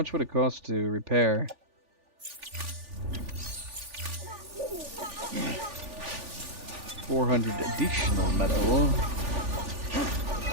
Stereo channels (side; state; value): left; late; 3.4 ms